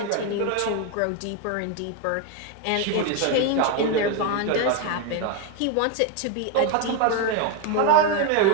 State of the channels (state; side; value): different; both; correlation 0.02